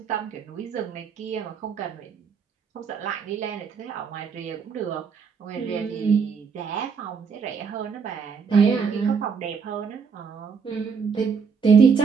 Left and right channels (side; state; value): left; quieter; 5.9 dB